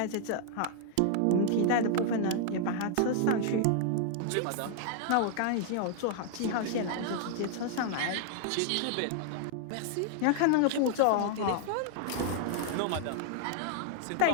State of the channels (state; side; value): different; both; correlation -0.01